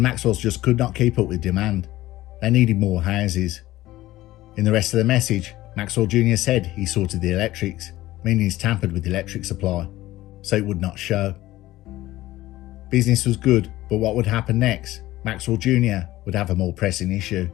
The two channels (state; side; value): quieter; right; 16.4 dB